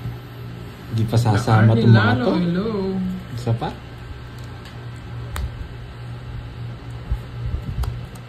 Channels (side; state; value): both; identical; correlation 1.00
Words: Hindi pa sasama itong mga to. Hello. Isa pa?